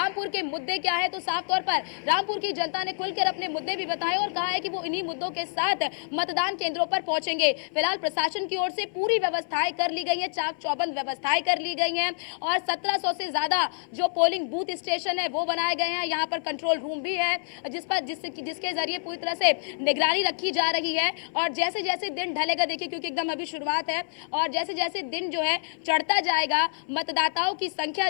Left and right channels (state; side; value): silent; right; 60 dB below the other